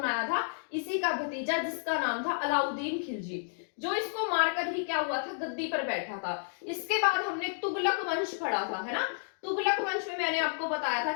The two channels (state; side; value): silent; right; digital silence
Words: आया था, इसी का भतीजा जिसका नाम था अलाउद्दीन खिलजी, जो इसको मारकर ही क्या हुआ था, गद्दी पर बैठा था। इसके बाद हमने तुगलक वंश पढ़ा था, है ना। तुगलक वंश में मैंने आपको बताया था